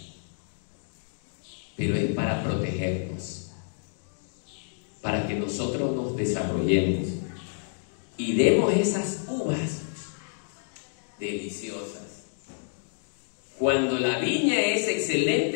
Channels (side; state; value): right; silent; digital silence